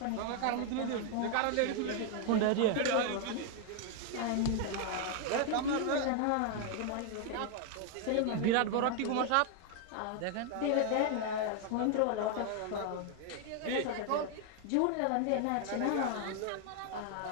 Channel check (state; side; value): different; both; correlation 0.01